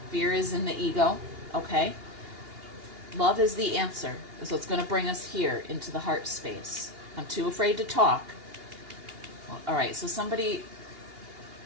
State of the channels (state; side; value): late; left; 2.8 ms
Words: Fear is in the ego. Okay? Love is the answer. So it's going to bring us here into the heart space. I'm too afraid to talk. Well, all right, so somebody...